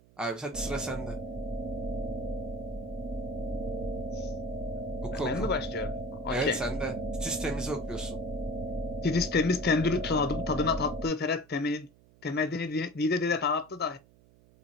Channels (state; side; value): noise; right; hum, 27 dB below the sound